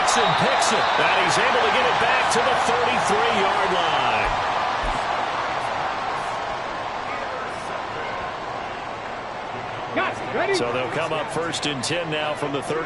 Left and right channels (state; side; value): identical; both; correlation 1.00